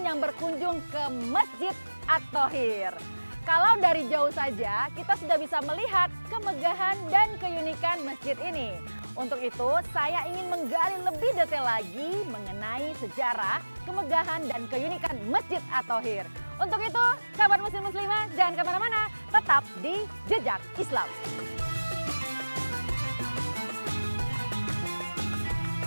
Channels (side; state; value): both; inverted; correlation -1.00